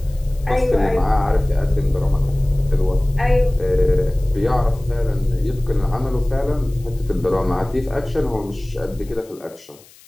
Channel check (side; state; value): left; noise; hiss, 25 dB below the sound